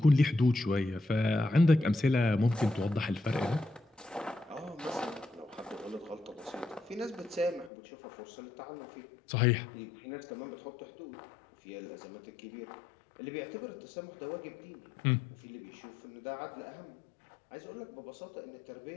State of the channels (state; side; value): drops out; right; at 7.7 s